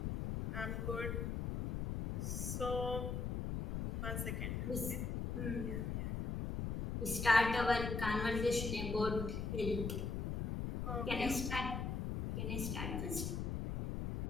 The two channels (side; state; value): left; noise; rumble, 2 dB below the sound